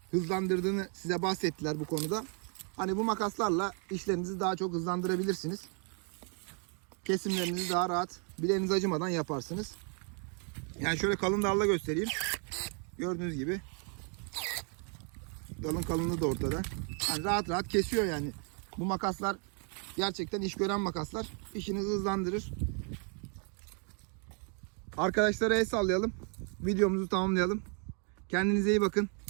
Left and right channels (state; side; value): quieter; left; 39.8 dB